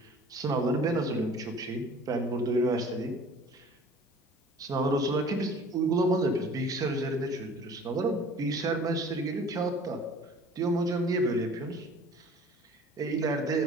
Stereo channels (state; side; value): normal; both; correlation 0.48